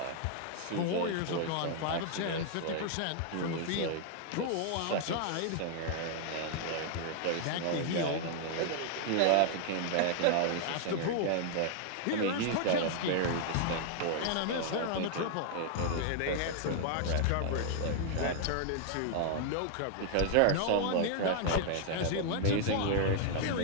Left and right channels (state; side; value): different; both; correlation 0.00